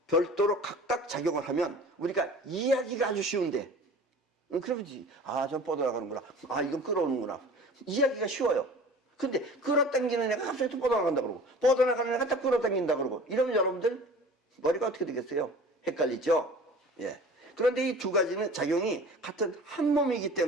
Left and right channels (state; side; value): normal; both; correlation 0.42